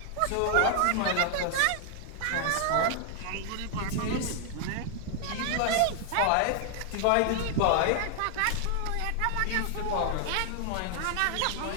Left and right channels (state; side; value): different; both; correlation 0.00